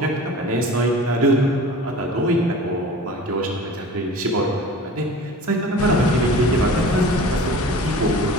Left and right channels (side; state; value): both; normal; correlation 0.40